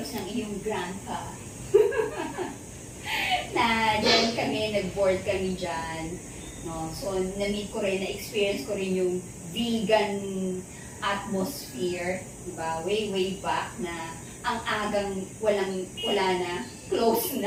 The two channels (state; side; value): identical; both; correlation 1.00